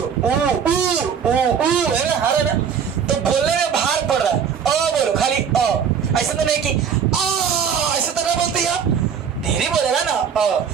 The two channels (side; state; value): left; quieter; 7.3 dB